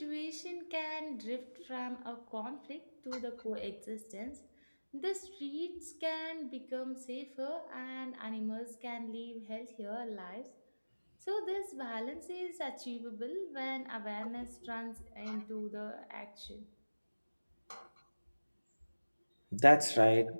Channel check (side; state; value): both; inverted; correlation -1.00